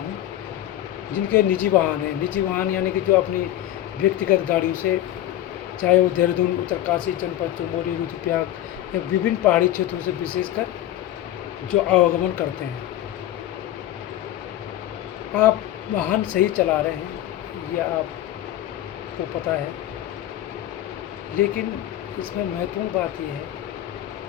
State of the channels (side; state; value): right; quieter; 13.1 dB